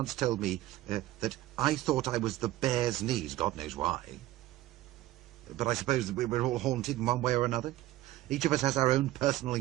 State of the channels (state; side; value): quieter; left; 16.0 dB